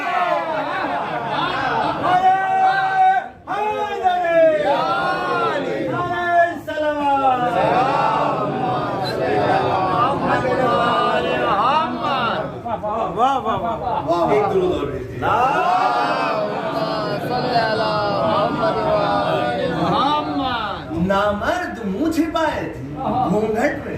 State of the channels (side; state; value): both; identical; correlation 1.00